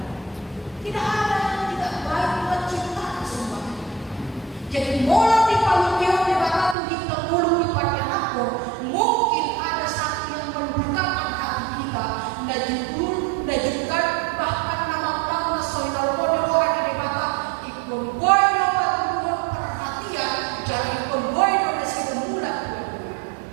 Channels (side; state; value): left; drops out; at 6.8 s